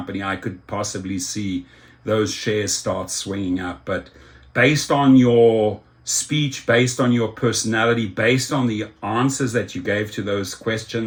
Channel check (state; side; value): identical; both; correlation 1.00